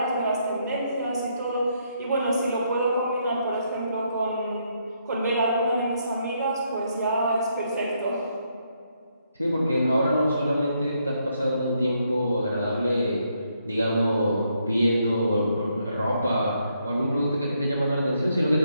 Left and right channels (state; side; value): inverted; both; correlation -0.75